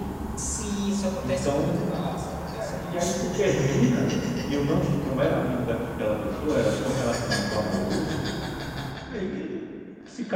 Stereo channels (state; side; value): identical; both; correlation 1.00